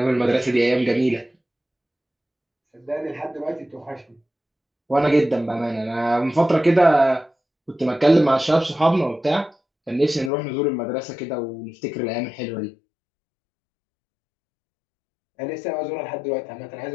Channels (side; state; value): right; drops out; at 10.3 s